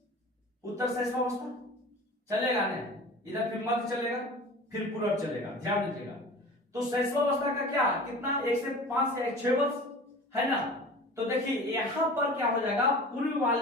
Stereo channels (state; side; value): normal; both; correlation 0.39